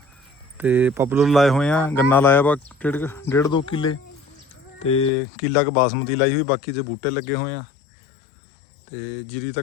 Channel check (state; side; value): drops out; right; at 5.1 s